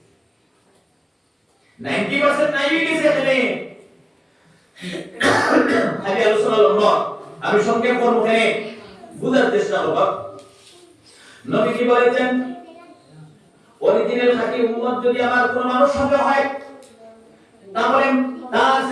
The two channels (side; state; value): both; identical; correlation 1.00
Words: 90% নাই গেছে এখানে খালি আলোচনা লম্বা আমি সংক্ষেপ করব এখানে বুঝার চেষ্টা করব নবী কি বলেছেন অরিজিনাল খাঁটি উম্মত যদি আমার কোন মানুষ সঙ্গে হয় তাহলে তার